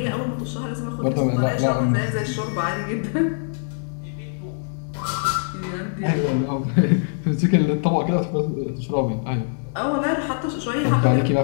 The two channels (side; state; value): right; silent; digital silence